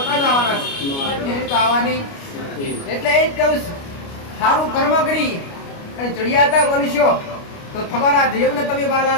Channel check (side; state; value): right; late; 29 ms